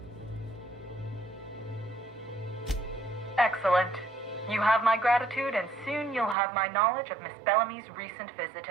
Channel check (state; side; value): drops out; left; at 6.4 s